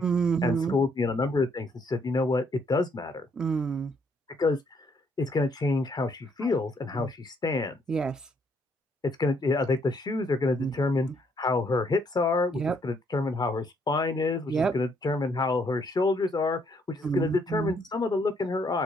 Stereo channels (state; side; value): normal; both; correlation 0.69